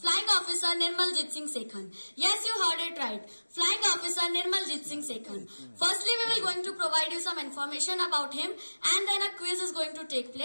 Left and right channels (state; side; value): inverted; both; correlation -1.00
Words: Flying Officer Nirmaljit Singh Sekhan. Yes, you heard it right. Flying Officer Nirmaljit Singh Sekhan. Firstly, we will going to provide you some information about him and then a quiz is going to take